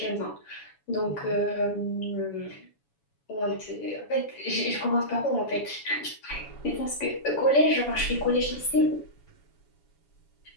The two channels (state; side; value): late; right; 7.1 ms